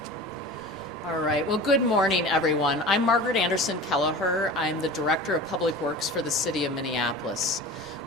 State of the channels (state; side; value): normal; both; correlation 0.35